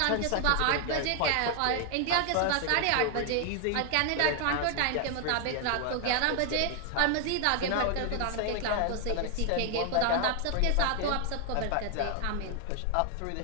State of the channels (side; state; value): both; different; correlation 0.00